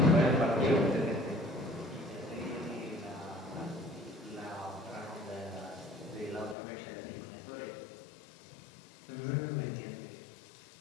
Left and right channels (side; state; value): right; drops out; at 6.6 s